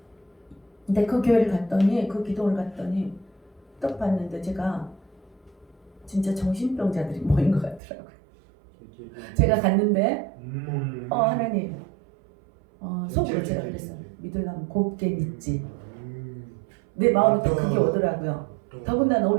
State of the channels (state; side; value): drops out; left; at 7.8 s